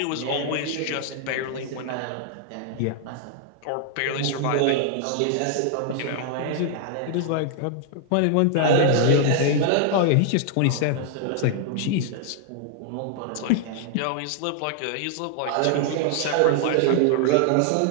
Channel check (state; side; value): different; both; correlation 0.00